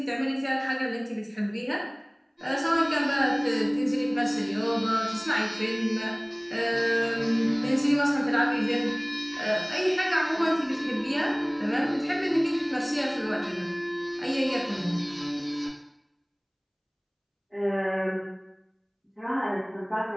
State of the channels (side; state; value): both; identical; correlation 1.00